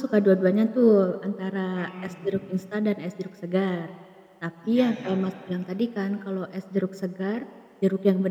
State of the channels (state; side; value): identical; both; correlation 1.00